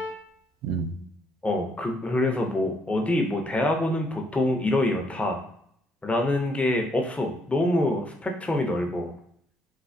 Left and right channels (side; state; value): both; normal; correlation 0.72